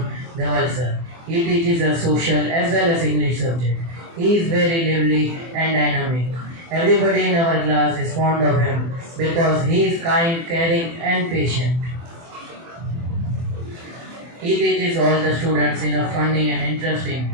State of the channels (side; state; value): left; late; 24 ms